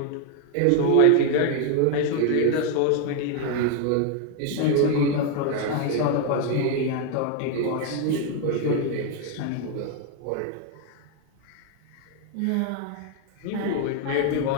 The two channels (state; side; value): different; both; correlation 0.01